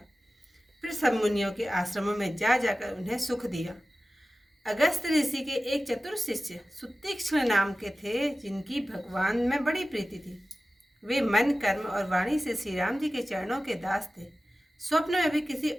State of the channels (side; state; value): both; normal; correlation 0.95